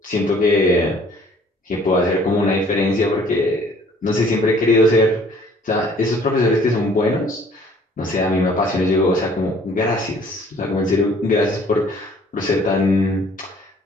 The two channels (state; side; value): normal; both; correlation 0.57